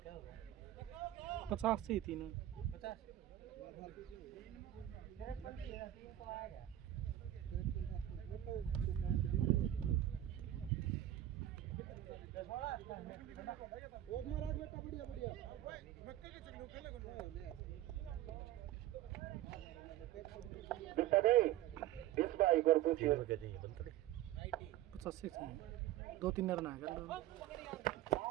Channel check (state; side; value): quieter; left; 13.3 dB